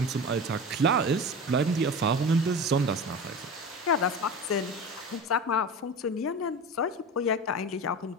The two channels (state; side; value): normal; both; correlation 0.30